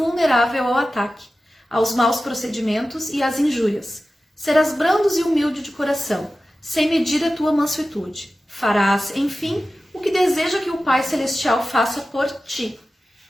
ao ataque, aos maus procedimentos e às injúrias. Serás brandos e humilde de coração, sem medir a tua mansuetude. Farás, enfim, o que deseja que o Pai Celestial faça por ti.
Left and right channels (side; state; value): both; normal; correlation 0.95